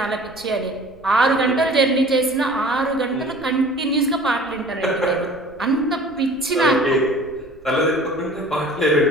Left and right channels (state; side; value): noise; right; rumble, 26 dB below the sound